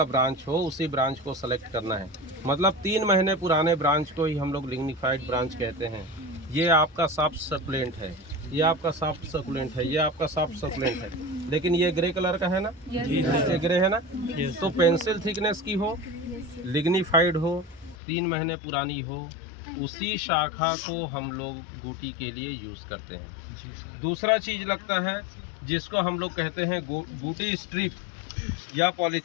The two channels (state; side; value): drops out; right; at 17.9 s